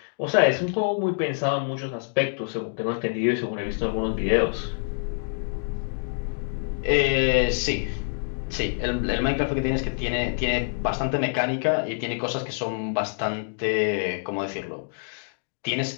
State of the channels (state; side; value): silent; right; digital silence